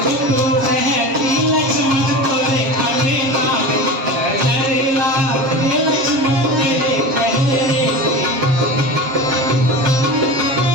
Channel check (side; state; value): left; late; 7.5 ms